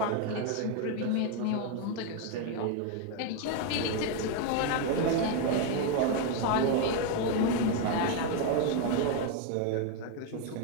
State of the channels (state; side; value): different; both; correlation 0.01